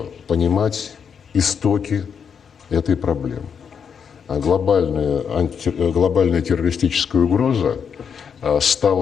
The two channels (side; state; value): right; quieter; 6.9 dB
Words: понимать истоки этой проблемы. Глобальная террористическая угроза